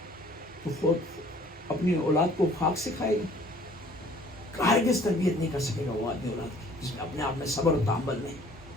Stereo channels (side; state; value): both; normal; correlation 0.54